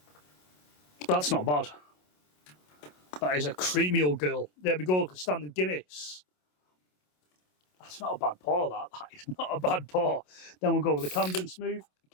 That's not bad. That is a creamy old girl. There we go, standard Guinness. That's not a bad pour, that. That is not a bad pour. Then we'll go with the Camden Smooth.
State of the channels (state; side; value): late; right; 27 ms